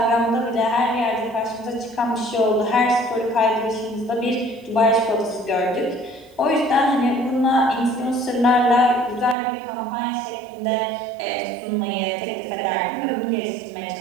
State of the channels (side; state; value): left; drops out; at 9.3 s